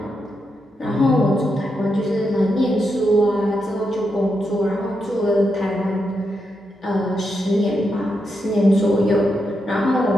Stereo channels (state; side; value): normal; both; correlation 0.84